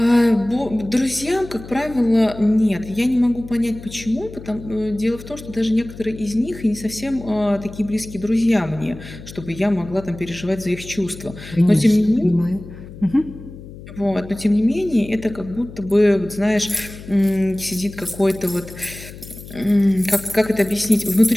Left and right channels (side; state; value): left; noise; hum, 15 dB below the sound